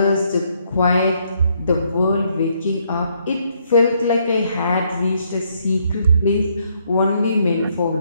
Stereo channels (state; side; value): inverted; both; correlation -0.72